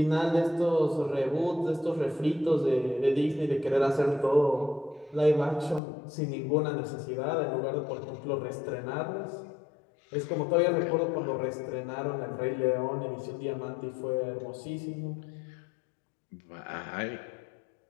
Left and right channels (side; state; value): right; drops out; at 5.8 s